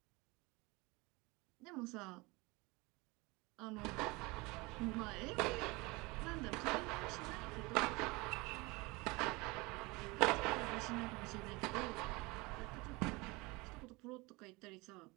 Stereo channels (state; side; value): quieter; left; 24.5 dB